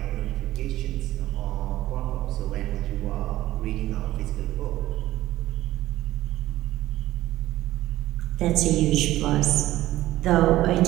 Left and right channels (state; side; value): quieter; left; 15.7 dB